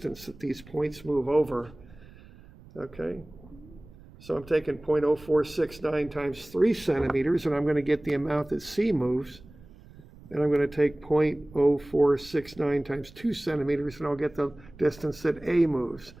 that these points move over, okay? So I'm taking 0.0469 times 3 centimeters, and I'm going to get the amount that C moves. And I'm going to take 0.0469 times 2 centimeters, and I'll get the distance that A moves.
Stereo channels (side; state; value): right; noise; rumble, 22 dB below the sound